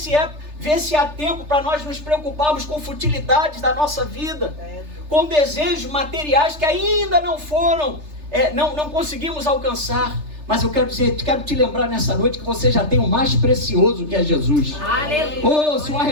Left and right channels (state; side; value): late; left; 3.3 ms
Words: há tempo para nós nos preocuparmos com futilidades da nossa vida, com desejos materiais que ainda não foram, não conseguimos alcançar. Mas eu quero te lembrar nessa noite que você já tem o mais precioso, que é Jesus. Oh, se o